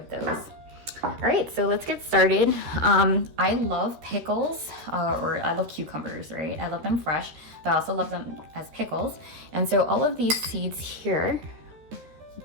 those. All right, so let's get started. I love pickles, or I love cucumbers, right? I love them fresh, but I also love them as pickles. And so all of these seeds here,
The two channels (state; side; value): late; left; 13 ms